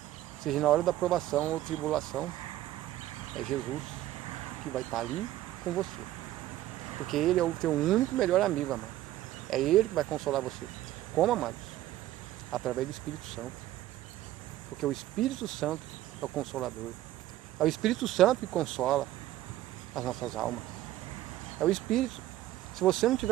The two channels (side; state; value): left; quieter; 14.3 dB